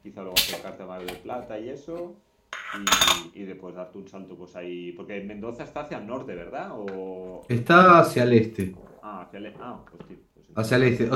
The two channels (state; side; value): identical; both; correlation 1.00